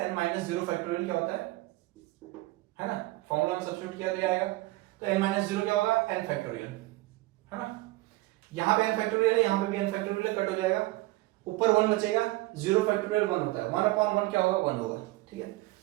n minus 0 factorial क्या होता है ना। फॉर्मूला में सब्स्टिट्यूट किया तो आएगा, तो n माइनस 0 क्या होगा? n फैक्टोरियल, है ना। यहाँ पे n फैक्टोरियल है, यहाँ पे भी n फैक्टोरियल कट हो जाएगा, ऊपर 1 बचेगा, 0 फैक्टोरियल 1 होता है, 1 अपॉन 1 क्या होगा? 1 होगा, ठीक है।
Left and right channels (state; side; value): quieter; left; 19.8 dB